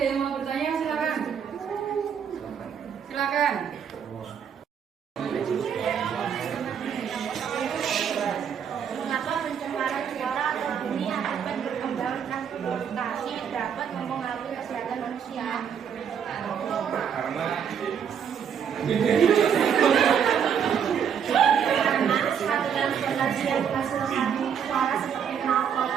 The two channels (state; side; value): quieter; left; 7.8 dB